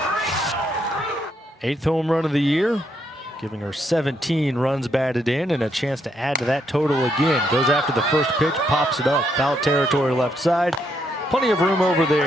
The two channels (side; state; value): both; normal; correlation 0.76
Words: Eighth home run of the year, giving her 17 runs batted in and a chance to add to that total again. Goes after the first pitch, pops it up, foul territory left side. Plenty of room over